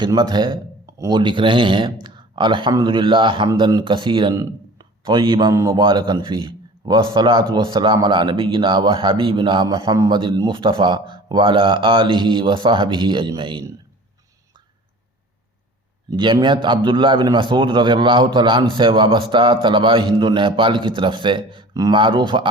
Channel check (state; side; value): normal; both; correlation 0.43